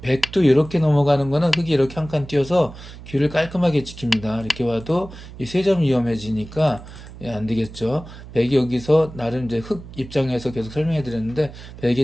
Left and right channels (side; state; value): right; noise; hum, 15 dB below the sound